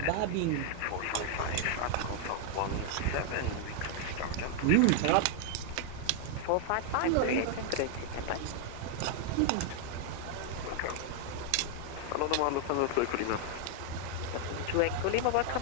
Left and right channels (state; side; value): different; both; correlation 0.00